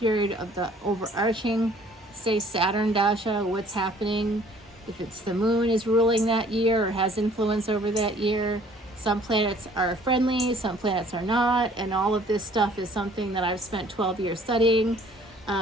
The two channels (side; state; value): both; normal; correlation 0.56